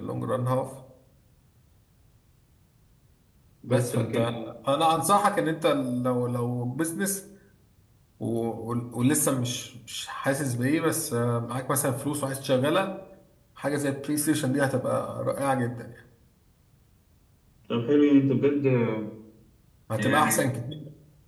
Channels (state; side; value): identical; both; correlation 1.00